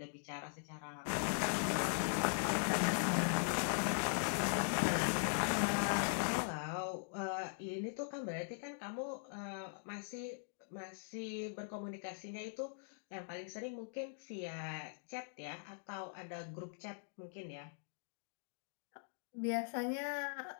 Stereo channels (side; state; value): right; silent; digital silence